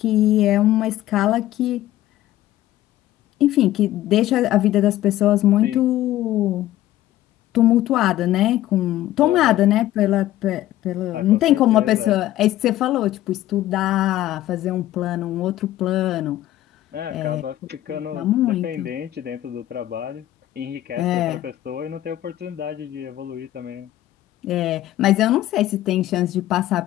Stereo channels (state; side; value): quieter; right; 14.2 dB